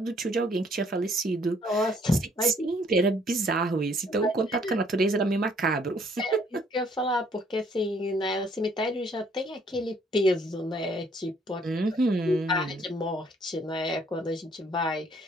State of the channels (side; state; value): both; normal; correlation 0.63